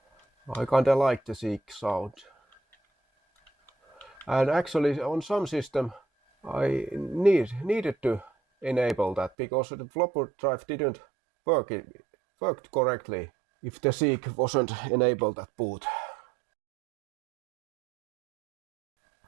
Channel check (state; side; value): drops out; left; at 9.3 s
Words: I kinda like the Seagate sound. And actually on some system I needed to enable that because the flopper drive didn't worked correctly if the Seagate wasn't enabled at boot.